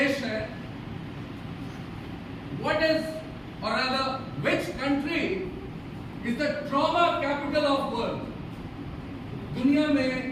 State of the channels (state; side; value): identical; both; correlation 1.00